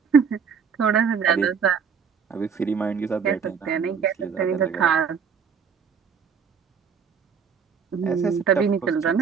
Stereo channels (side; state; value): left; quieter; 6.5 dB